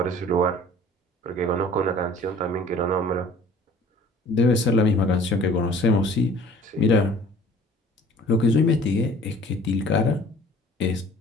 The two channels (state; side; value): normal; both; correlation 0.50